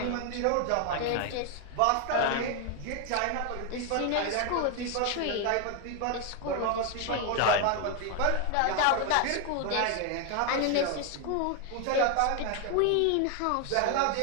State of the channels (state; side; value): different; both; correlation 0.01